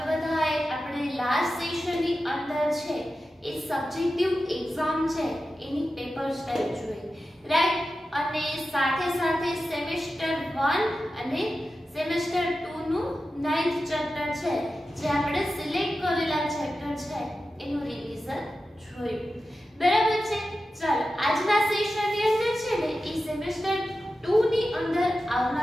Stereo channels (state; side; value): normal; both; correlation 0.92